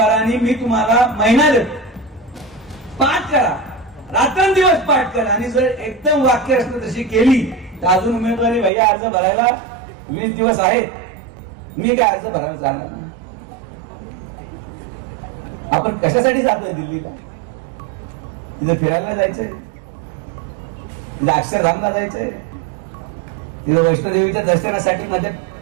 मी तुम्हाला महिना देतो, पाठ करा, रात्रंदिवस पाठ करा आणि जर एकदम वाक्य रचना तशी केली तर अजून उमेदवारी भैया अर्ज भरायला 20 दिवस आहेत। मी काय अर्ज भरायला जाणार नाही। आपण कशासाठी जातोय दिल्लीला? तिथे फिरायला जायचंय, तिथे अक्षरधामला जायचंय, तिथे वैष्णोदेवीच्या दर्शनासाठी मध्ये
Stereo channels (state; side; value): drops out; left; at 8.7 s